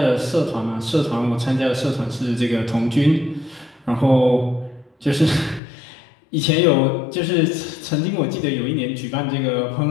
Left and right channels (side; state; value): right; drops out; at 5.6 s